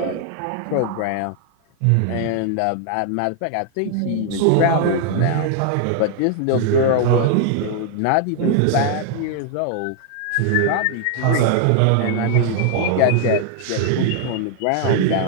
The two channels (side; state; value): both; different; correlation 0.00